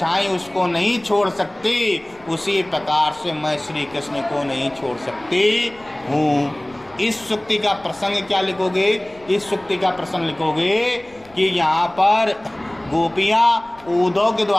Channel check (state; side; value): noise; left; rumble, 27 dB below the sound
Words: उसको नहीं छोड़ सकती, उसी प्रकार से मैं श्री कृष्ण को नहीं छोड़ सकती हूँ। इस सुक्ति का प्रसंग क्या लिखोगे? इस सुक्ति का प्रसंग लिखोगे कि यहाँ पर गोपियाँ उद्धव के